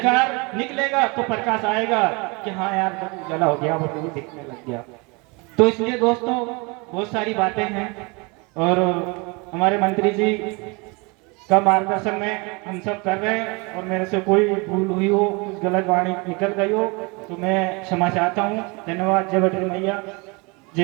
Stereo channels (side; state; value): left; quieter; 28.7 dB